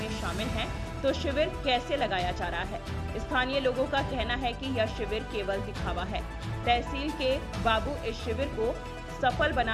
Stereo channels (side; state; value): both; identical; correlation 1.00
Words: शामिल हैं तो शिविर कैसे लगाया जा रहा है। स्थानीय लोगों का कहना है कि यह शिविर केवल दिखावा है। तहसील के बाबू इस शिविर को सफल